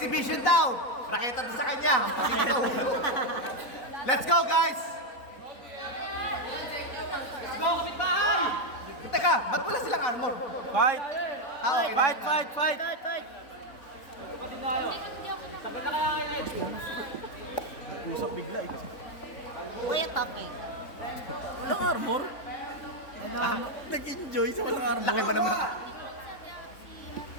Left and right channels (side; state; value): right; late; 4.0 ms